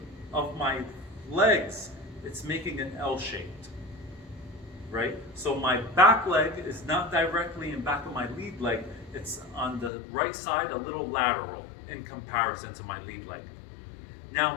of my legs, it's making an L shaped, right? So my back leg is not directly in back of my lead leg, it's on the right side, a little lateral in comparison to my lead leg.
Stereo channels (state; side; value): drops out; right; at 9.9 s